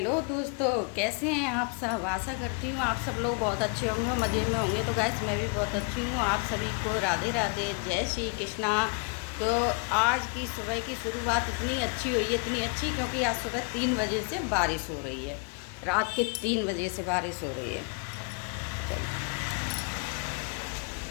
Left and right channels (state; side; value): quieter; right; 34.5 dB